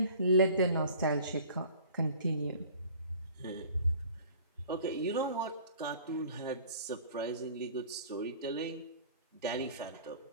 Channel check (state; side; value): inverted; both; correlation -0.48